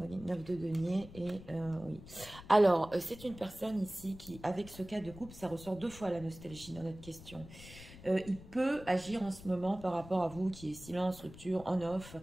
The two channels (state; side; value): noise; left; rumble, 17 dB below the sound